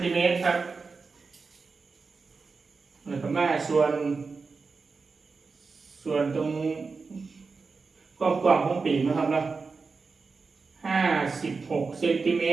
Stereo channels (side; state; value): left; quieter; 4.5 dB